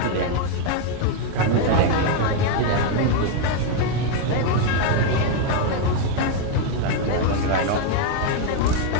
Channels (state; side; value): different; both; correlation 0.01